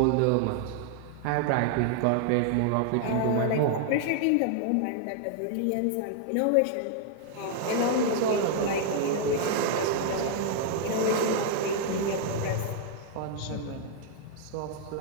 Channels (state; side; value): different; both; correlation 0.00